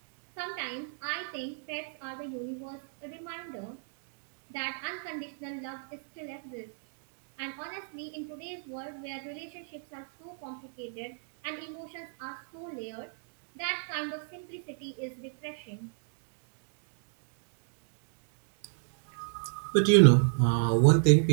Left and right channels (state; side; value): silent; left; digital silence